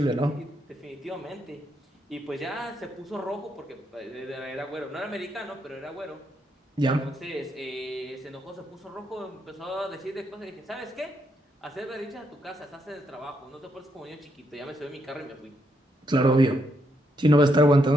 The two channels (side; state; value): both; normal; correlation 0.77